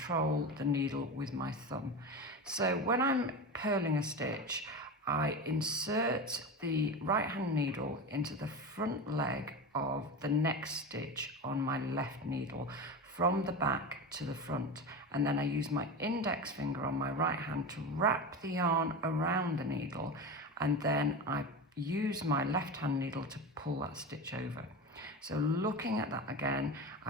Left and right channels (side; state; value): both; normal; correlation 0.24